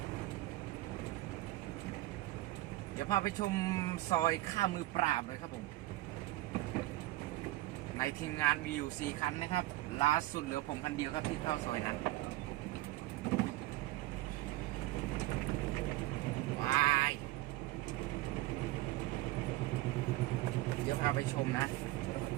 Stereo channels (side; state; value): left; quieter; 17.0 dB